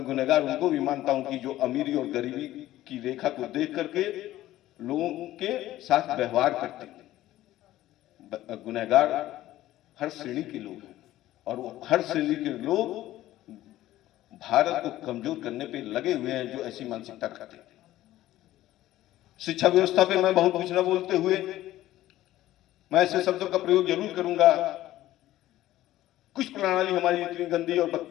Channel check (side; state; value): right; quieter; 14.8 dB